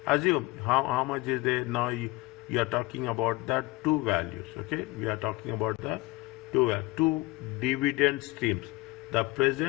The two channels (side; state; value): right; quieter; 20.9 dB